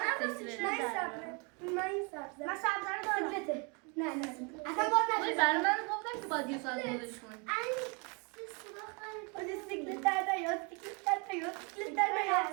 من این سبزه من سبزه رو دارم سیکلته نه اصلا باز ولی برای من گفتم که باید یه ساعت بودش کنی باید سیکلت در نیاد سیکلت در نیاد سیکلت در نیاد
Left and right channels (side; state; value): left; quieter; 33.2 dB